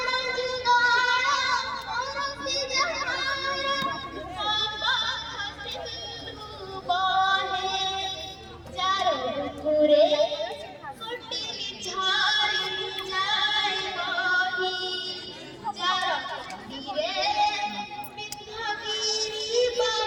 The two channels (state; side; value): identical; both; correlation 1.00